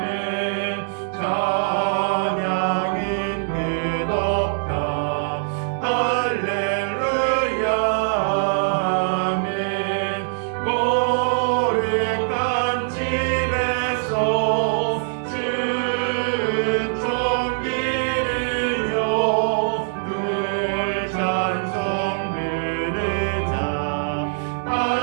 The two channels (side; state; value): left; silent; digital silence